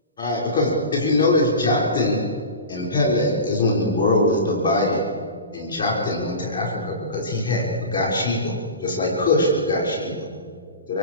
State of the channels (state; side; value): inverted; both; correlation -0.32